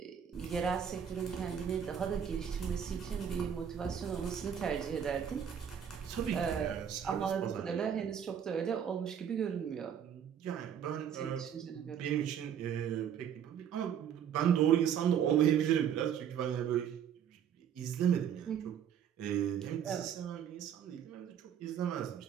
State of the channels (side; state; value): left; quieter; 8.6 dB